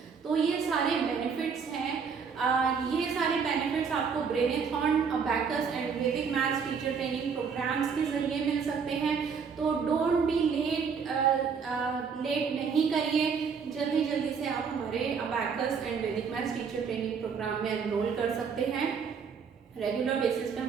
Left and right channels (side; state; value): left; quieter; 6.1 dB